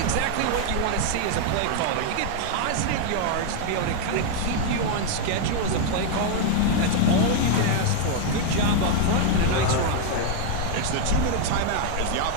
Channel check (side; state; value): both; different; correlation 0.00